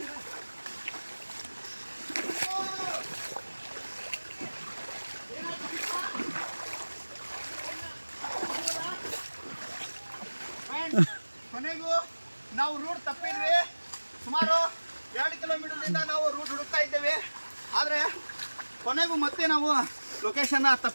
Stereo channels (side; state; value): both; inverted; correlation -1.00